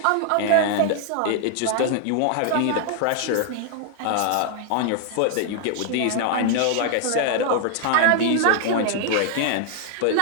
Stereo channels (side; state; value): both; different; correlation 0.00